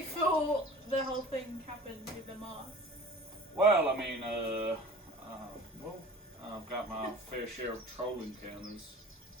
the whole thing happened with the Mars. Well, I mean, I've got my fair share of troll encounters.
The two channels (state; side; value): normal; both; correlation 0.42